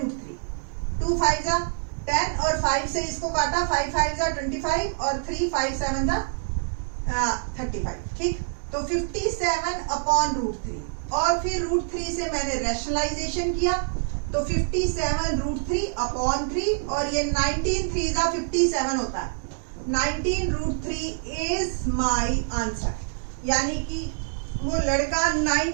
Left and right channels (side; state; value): left; silent; digital silence